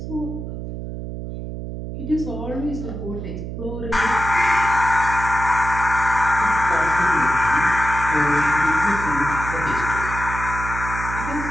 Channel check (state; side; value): noise; right; hum, 7 dB below the sound